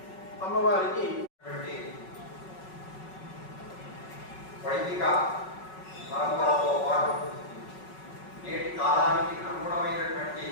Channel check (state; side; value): late; right; 5.4 ms